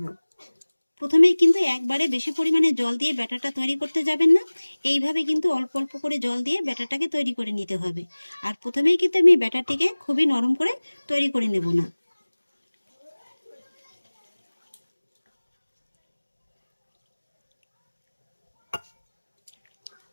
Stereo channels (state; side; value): inverted; both; correlation -1.00